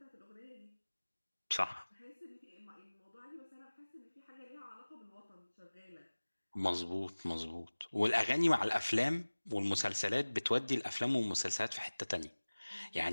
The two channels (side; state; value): both; inverted; correlation -1.00